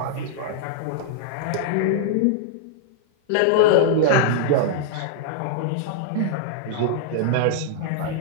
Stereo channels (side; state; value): both; different; correlation -0.02